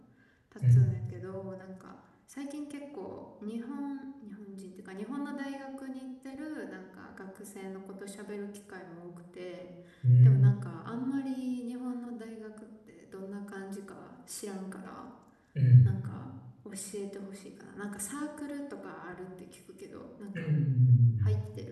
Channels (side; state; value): both; identical; correlation 1.00